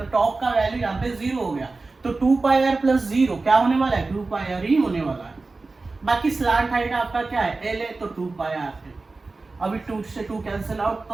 टॉप का वैल्यू यहाँ पे 0 हो गया, तो 2 पाई आर प्लस 0 क्या होने वाला है? 2 पाई आर ही होने वाला है। बाकी स्लांट हाइट आपका क्या है? एल है, तो 2 पाई आर है। अभी 2 से 2 कैंसिल आउट, तो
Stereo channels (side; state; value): left; quieter; 3.6 dB